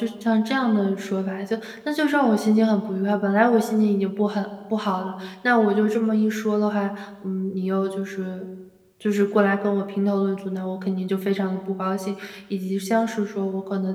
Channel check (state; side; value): identical; both; correlation 1.00